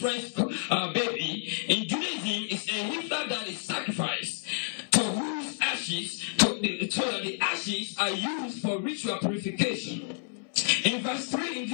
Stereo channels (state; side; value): silent; right; 58 dB below the other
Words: baby. In Judaism, it's a heifer that is sacrificed, to whose ashes, so that the ashes are used for ritual purification. In verse 3 in